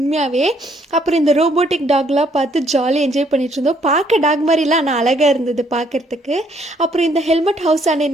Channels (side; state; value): both; normal; correlation 0.67